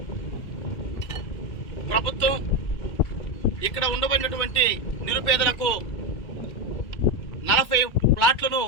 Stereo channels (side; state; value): right; late; 2.3 ms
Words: ప్రభుత్వం ఇక్కడ ఉండబడినటువంటి నిరుపేదలకు 40 ప్లాట్లను